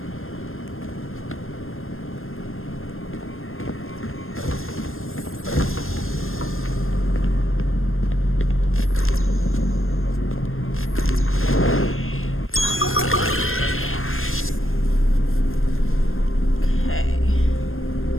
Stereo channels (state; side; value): late; right; 0.60 ms